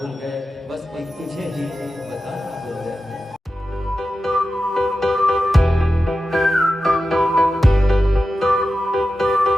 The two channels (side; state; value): both; normal; correlation 0.92